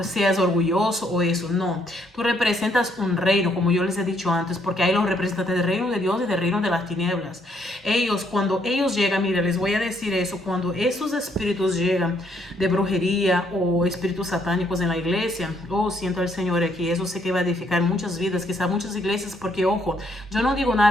seas orgulloso o eso, no. Tú representas un reino, como yo les he dicho antes, porque hay los representantes del reino de Dios y del reino de las tinieblas. Ellos, cuando ellos llegan, mira, les voy a decir eso, cuando esos espíritus llegan de brujería o espíritus satánicos en la iglesia, siento al Señor aquí, eso sé que va a edificar muchas vidas, quizá muchas iglesias, porque ojo, yo no digo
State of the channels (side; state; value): both; normal; correlation 0.71